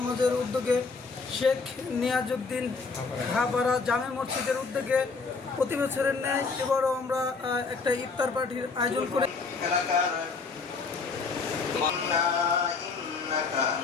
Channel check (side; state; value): right; quieter; 4.6 dB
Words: উদ্যোগে শেখ নিয়াজউদ্দিন খাপাড়া জামে মসজিদের উদ্যোগে প্রতি বছরের ন্যায় এবারও আমরা একটা ইফতার পার্টির আয়োজন করে